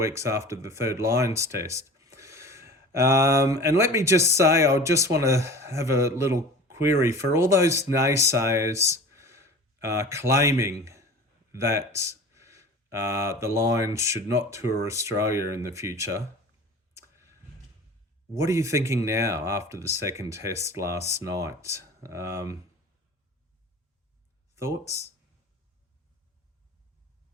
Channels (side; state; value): both; normal; correlation 0.38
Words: after the third Lions test? And let me just say, I just want to have a little query for all those naysayers claiming that the Lions should not tour Australia in the future. What are you thinking now after the second test last night? Thoughts?